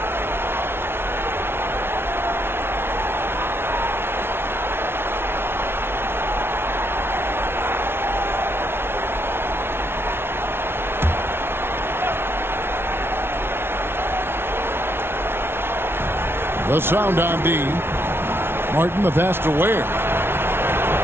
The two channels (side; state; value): left; late; 0.11 ms